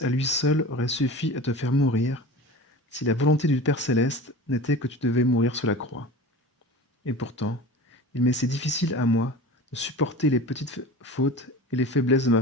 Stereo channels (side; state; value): both; normal; correlation 0.35